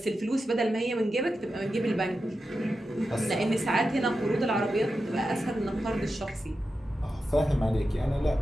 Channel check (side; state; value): both; normal; correlation 0.90